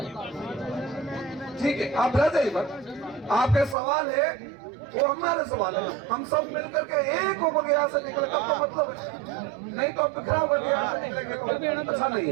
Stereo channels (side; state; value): left; drops out; at 3.8 s